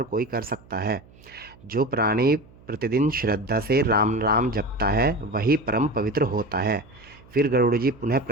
कोई कर सकता है। जो प्राणी प्रतिदिन श्रद्धा से राम राम जपता है वही परम पवित्र होता है। फिर गरुड़ जी पुनः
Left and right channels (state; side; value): noise; right; hum, 25 dB below the sound